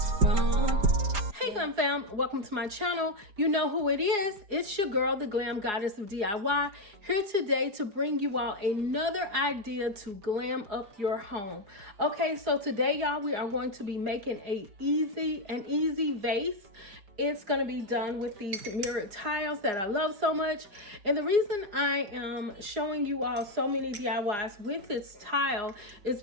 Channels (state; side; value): late; left; 4.8 ms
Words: wrong. Hey Glam fam, welcome to my channel. You know who it is. It's your girl, the Glam Goddess of DIY, here today to bring you all another idea to glam up your home. Okay, so today y'all, we are going to be making an easy vase. It's going to be done with these mirrored tiles that I love so much. And the reason I am showing you all so many DIYs with this tile is